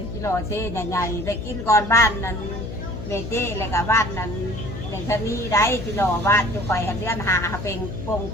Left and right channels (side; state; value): left; noise; hum, 8 dB below the sound